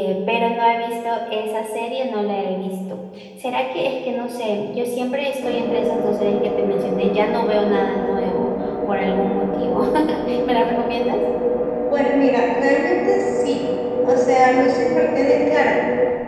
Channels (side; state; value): both; identical; correlation 1.00